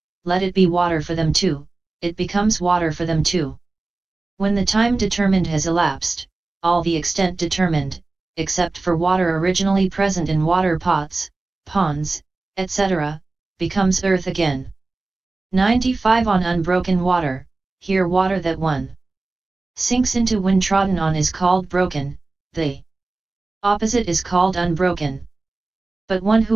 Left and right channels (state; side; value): quieter; left; 3.4 dB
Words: let it be water for them too, it becomes water for them too. When the time determined has elapsed, all the extent determined, except for water originally present in water pots, ponds, etc., becomes earth again. 95 On unbroken water, here water that one sinks into when trodden on is called broken, the opposite is called unbroken. But one